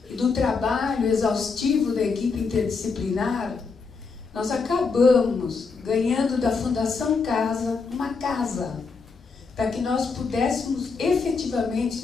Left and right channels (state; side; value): quieter; right; 4.8 dB